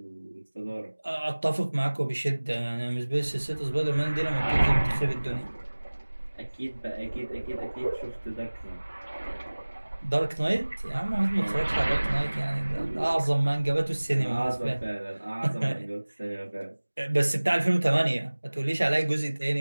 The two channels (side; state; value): both; inverted; correlation -1.00